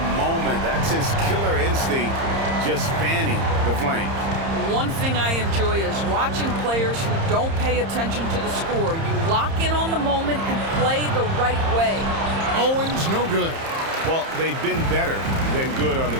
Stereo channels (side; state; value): left; late; 30 ms